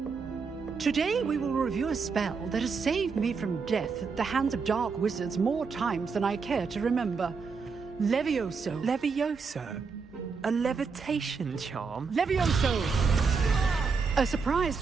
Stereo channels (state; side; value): quieter; left; 5.1 dB